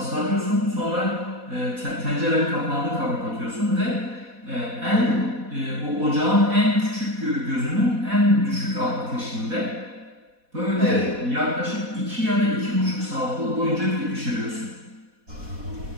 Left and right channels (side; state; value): left; late; 4.1 ms